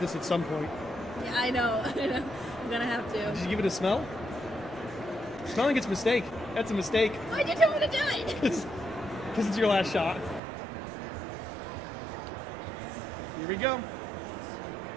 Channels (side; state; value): left; drops out; at 10.4 s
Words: at some point. Yeah, I know. I'm gonna have to. Did you give it a smell? Smelling it's a mistake. That's a mistake. Why'd you tell me to do it? Because it's your last shot. Here we go.